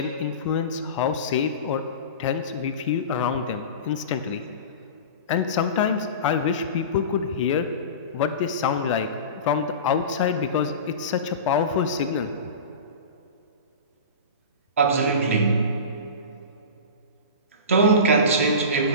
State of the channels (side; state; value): both; inverted; correlation -0.30